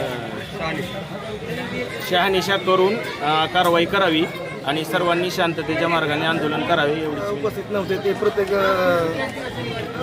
शहानिशा करून कारवाई करावी आणि सर्वांनी शांततेच्या मार्गाने आंदोलन करावे. एवढी उपस्थित नव्हते ते प्रत्येक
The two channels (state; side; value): identical; both; correlation 1.00